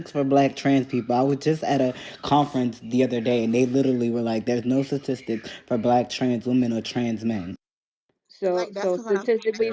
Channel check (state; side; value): identical; both; correlation 1.00